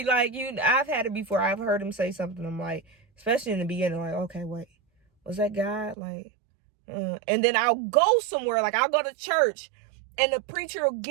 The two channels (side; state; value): left; drops out; at 6.0 s